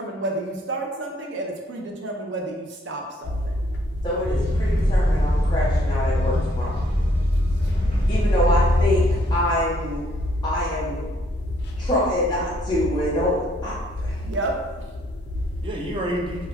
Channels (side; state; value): both; normal; correlation 0.67